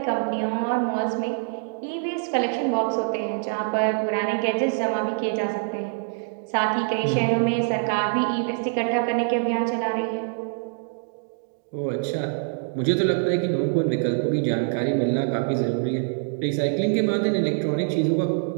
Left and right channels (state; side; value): silent; left; digital silence